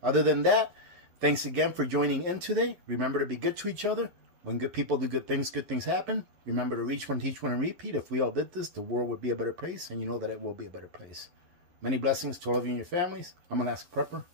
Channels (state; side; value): late; left; 11 ms